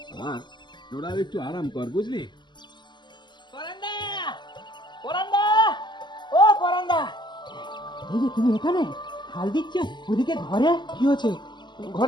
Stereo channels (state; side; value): late; right; 0.21 ms